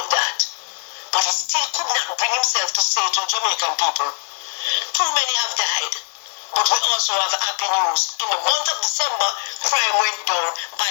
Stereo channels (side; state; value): right; silent; 65 dB below the other